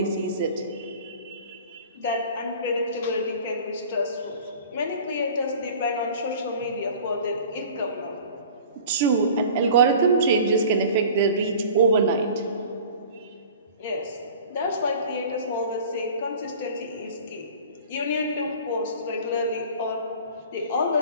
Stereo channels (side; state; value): both; inverted; correlation -0.43